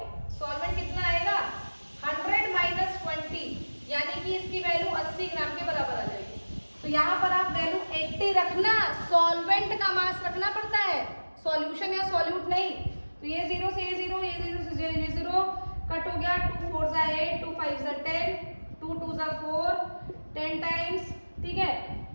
सॉल्वेंट कितना आएगा 100 माइनस 20, यानी कि इसकी वैल्यू 80 ग्राम के बराबर आ जाएगी। तो यहाँ पर आप वैल्यू 80 रखना, सॉल्वेंट का मास रखना पड़ता है, सॉल्यूशन या सॉल्यूट नहीं। तो ये 0 से ये 0, ये 0 से ये 0 कट हो गया, 2 4 जा 8, 2 5 जा 10, 2 2 जा 4, 10 टाइम्स, ठीक है,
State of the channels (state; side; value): inverted; both; correlation -1.00